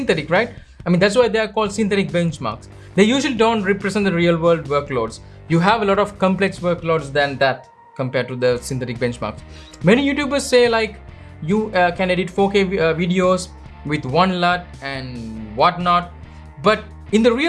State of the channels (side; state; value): both; identical; correlation 1.00